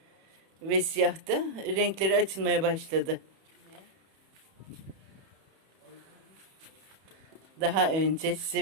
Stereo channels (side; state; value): left; late; 31 ms